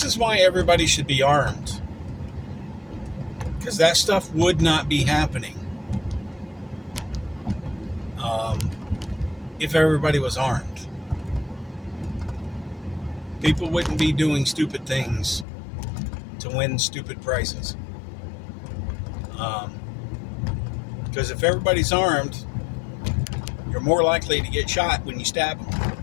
is why everybody should be armed, because that stuff would not be happening if everybody was armed. People wouldn't be doing stupid things to win stupid prizes. Because if everybody's armed, you're more likely to get shot when you stab them.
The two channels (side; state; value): right; drops out; at 15.5 s